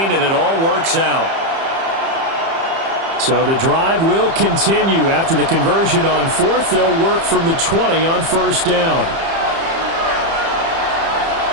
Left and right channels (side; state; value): left; late; 30 ms